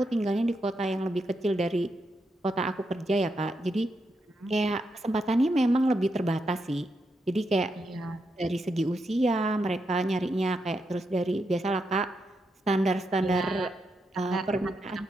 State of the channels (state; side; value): normal; both; correlation 0.83